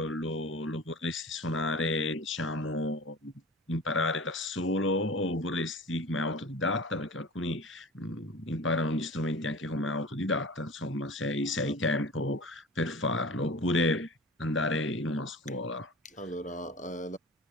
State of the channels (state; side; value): normal; both; correlation 0.38